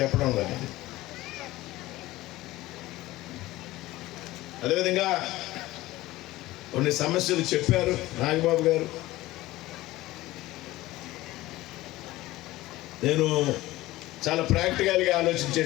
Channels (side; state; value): right; quieter; 17.6 dB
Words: చెప్పడం కానీ. అదేవిధంగా కొన్ని సమస్యలు చెప్పారు నాగబాబు గారు. నేను చాలా ప్రాక్టికల్గా